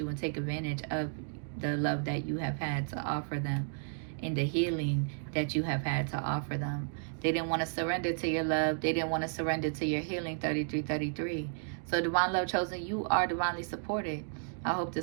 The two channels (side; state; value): left; silent; digital silence